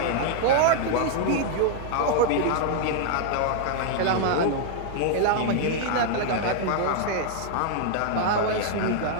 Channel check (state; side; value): different; both; correlation -0.01